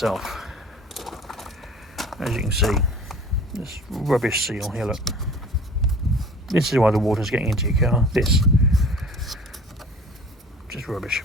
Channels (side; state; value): both; normal; correlation 0.45